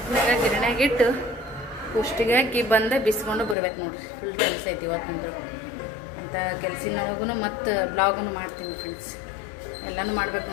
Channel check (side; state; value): right; drops out; at 3.6 s